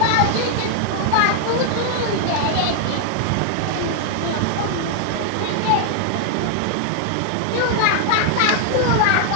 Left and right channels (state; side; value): different; both; correlation 0.00